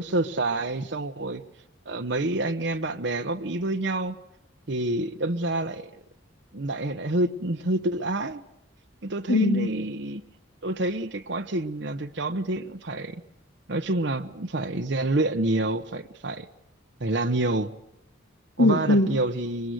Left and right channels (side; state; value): both; normal; correlation 0.28